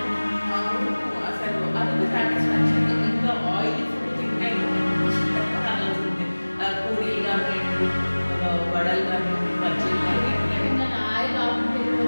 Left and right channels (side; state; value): both; inverted; correlation -1.00